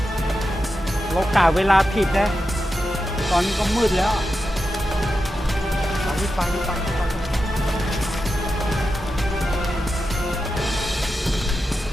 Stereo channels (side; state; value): both; normal; correlation 0.89